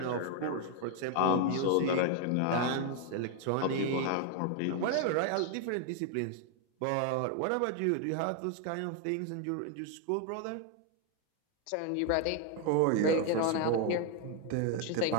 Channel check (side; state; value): both; different; correlation 0.01